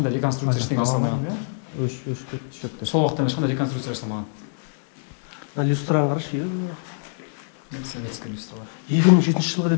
реконструкция ештеңе жасалмаған. Өшіп шөкті. Сол уақытта ешқандай реконструкция жасалмаған. Люстраны қарашы. Советский люстралар. 2007 жылға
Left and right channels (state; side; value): silent; right; digital silence